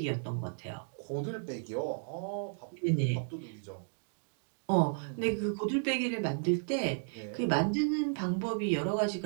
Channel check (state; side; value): silent; left; digital silence